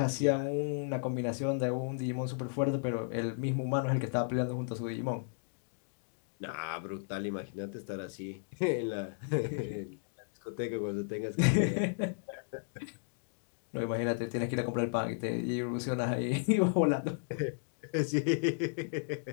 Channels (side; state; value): right; silent; digital silence